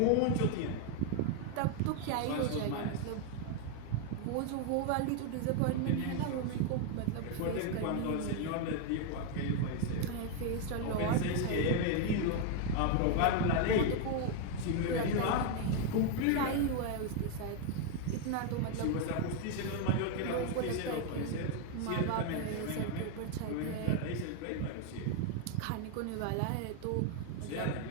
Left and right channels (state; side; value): different; both; correlation 0.01